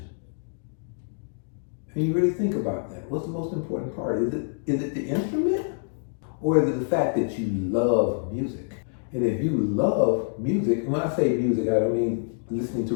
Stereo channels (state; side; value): silent; right; digital silence